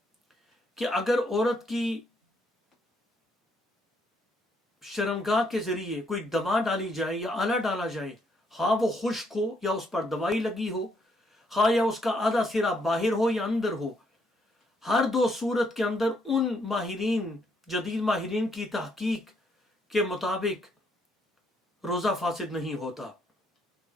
کہ اگر عورت کی شرمگاہ کے ذریعے کوئی دوا ڈالی جائے یا آلہ ڈالا جائے، ہاں وہ خشک ہو یا اس پر دوائی لگی ہو، ہاں یا اس کا آدھا سرا باہر ہو یا اندر ہو، ہر دو صورت کے اندر ان جدید ماہرین کی تحقیق کے مطابق روزہ فاسد نہیں ہوتا۔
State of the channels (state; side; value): normal; both; correlation 0.72